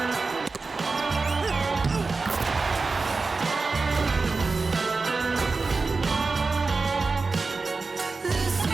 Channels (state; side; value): quieter; left; 4.0 dB